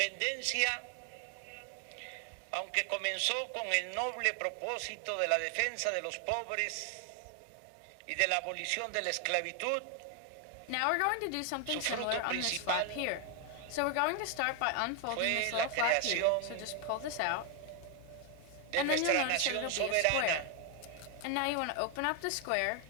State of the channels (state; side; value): different; both; correlation 0.01